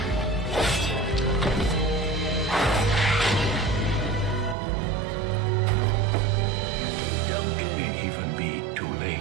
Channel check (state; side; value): drops out; left; at 4.5 s